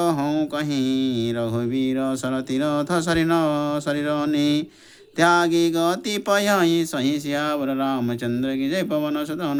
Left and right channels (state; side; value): identical; both; correlation 1.00